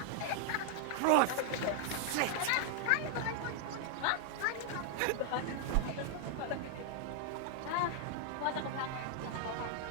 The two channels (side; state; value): both; different; correlation 0.00